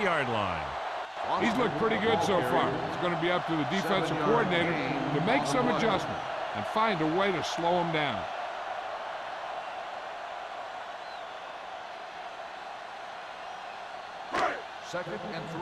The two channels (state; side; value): identical; both; correlation 1.00